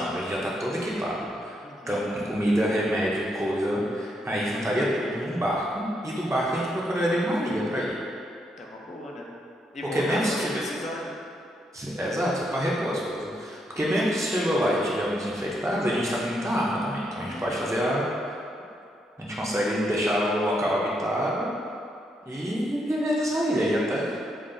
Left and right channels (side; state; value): both; normal; correlation 0.78